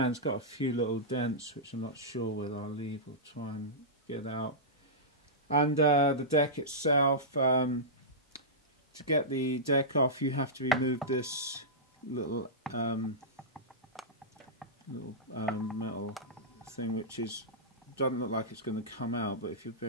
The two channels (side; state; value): both; normal; correlation -0.14